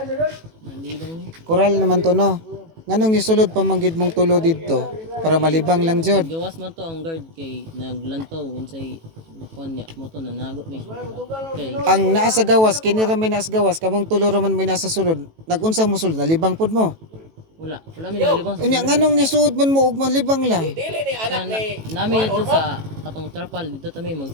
Malibang ni. Koral naman to no. Nganong nisulod pa manggid mong tulo dito para malibang lang jud. Gawas man to ang guard kay naglantaw unsay kuan niya mo to nanago ni. Kay Ang naa sa gawas kini ra may naa sa gawas kamong tulo ra man may nasa sulod. Nagunsa mo sulod nalibang pud mo. wala mi nalibang sa. Unya nganong nisuod man mo ug malibang lang. Dili ni anak ni. Nami dito sa katong trapal dito ta may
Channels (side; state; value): left; late; 18 ms